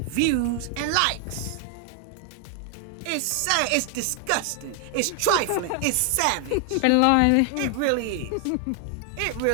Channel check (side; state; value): both; different; correlation 0.00